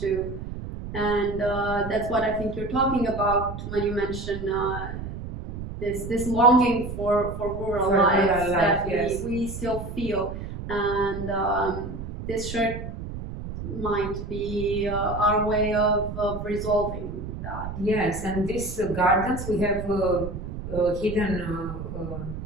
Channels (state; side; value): noise; right; rumble, 8 dB below the sound